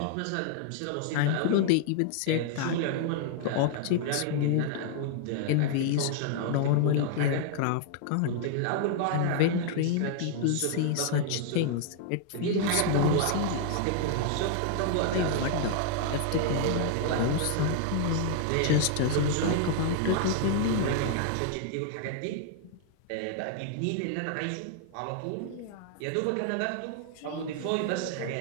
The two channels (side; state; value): both; different; correlation 0.00